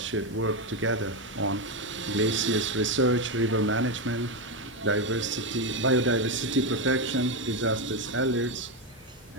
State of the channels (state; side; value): normal; both; correlation 0.09